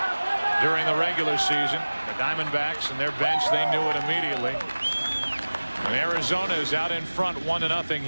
during the regular season. The Diamondbacks and their bench, they knew it immediately. And Arizona is out in front 1-0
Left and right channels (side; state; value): both; inverted; correlation -1.00